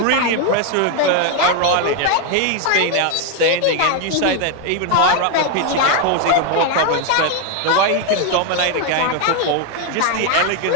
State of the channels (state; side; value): different; both; correlation 0.01